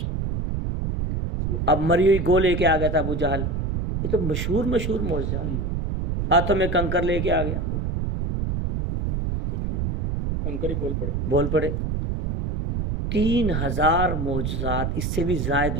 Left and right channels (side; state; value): right; noise; rumble, 1 dB below the sound